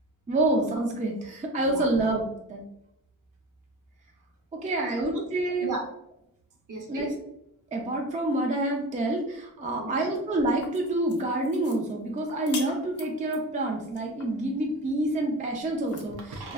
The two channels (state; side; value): normal; both; correlation 0.33